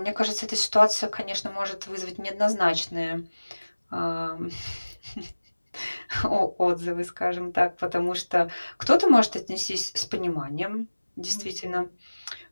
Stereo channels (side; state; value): both; inverted; correlation -1.00